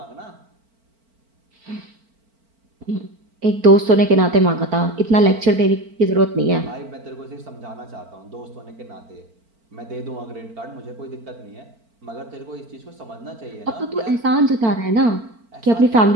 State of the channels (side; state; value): left; late; 4.4 ms